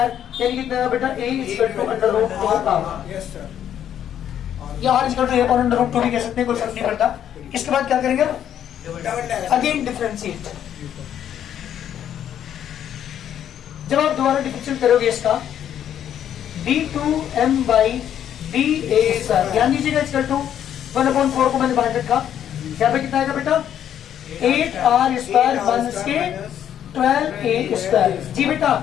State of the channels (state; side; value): quieter; right; 10.0 dB